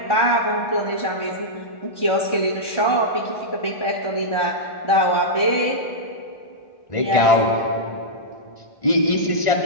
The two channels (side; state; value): right; late; 1.5 ms